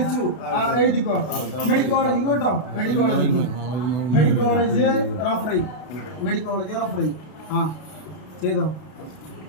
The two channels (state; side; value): late; right; 32 ms